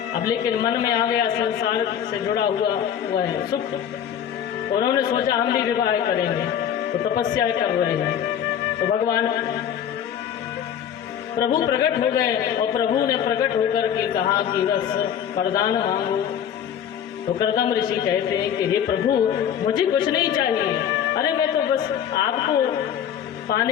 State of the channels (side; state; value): right; quieter; 9.2 dB